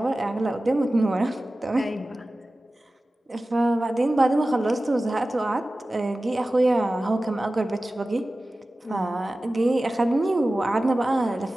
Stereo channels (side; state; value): both; normal; correlation 0.96